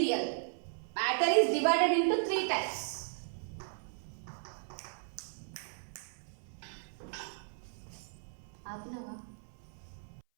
Matter is divided into three types.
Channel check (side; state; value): left; silent; 54 dB below the other